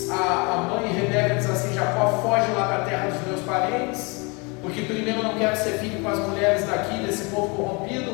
A mãe Rebeca diz assim: Jacó, foge lá para a terra dos meus parentes, porque primeiro eu não quero que você fique com as mulheres daqui, desse povo corrompido.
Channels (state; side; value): quieter; right; 29.7 dB